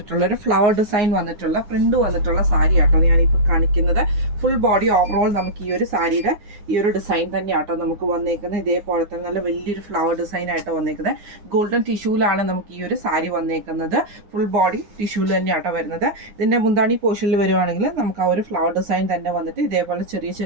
ഒരു ഫ്ലവർ ഡിസൈൻ വന്നിട്ടുള്ള പ്രിന്റ് വന്നിട്ടുള്ള സാരി ആട്ടോ ഞാനിപ്പോൾ കാണിക്കുന്നത്. ഫുൾ ബോഡി ഓവറോൾ നമുക്ക് ഈ ഒരു സാരിയുടെ ഈ ഒരു ഡിസൈൻ തന്നെ ആട്ടോ നമുക്ക് വന്നേക്കുന്നത്. ഇതേപോലെ തന്നെ നല്ല വലിയൊരു ഫ്ലവർ ഡിസൈൻ ആയിട്ട് വന്നേക്കുന്നത്. ഗോൾഡൻ ടിഷ്യൂലാണ് നമുക്ക് ഈ ഒരു സാരി വന്നേക്കുന്നത്. ഫുൾ ബോഡി ടിഷ്യൂല് തന്നെ ആട്ടോ വരുന്നത്. ഇതിൻ്റെ മുന്താണി പോർഷനിൽ വരുവാണെങ്കിൽ നമുക്ക് ആ ഒരു ഫ്ലവർ ഡിസൈൻ തന്നെ വന്നിട്ട് ഇതേപോലെ ചെറിയ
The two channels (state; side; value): late; left; 9.7 ms